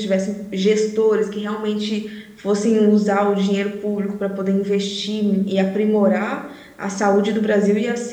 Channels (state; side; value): identical; both; correlation 1.00